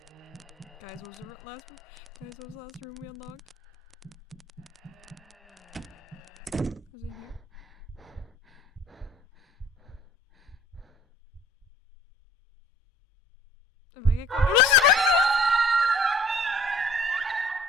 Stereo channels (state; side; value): normal; both; correlation 0.53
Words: Guys, what was the last room? Guys, what was the last room we unlocked? Was it here? If I get caught.